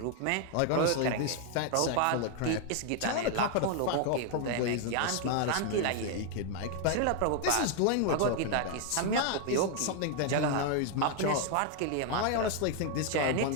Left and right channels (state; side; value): different; both; correlation 0.00